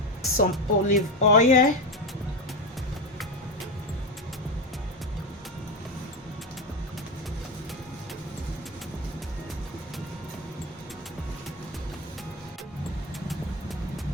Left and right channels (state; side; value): normal; both; correlation 0.17